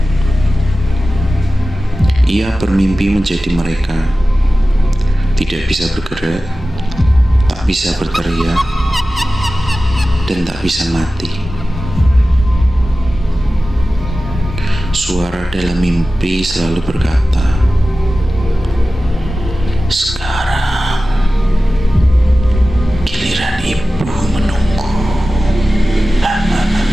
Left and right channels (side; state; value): both; normal; correlation 0.95